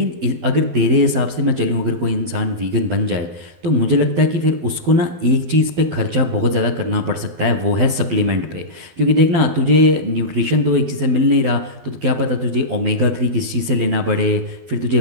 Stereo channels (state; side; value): late; left; 12 ms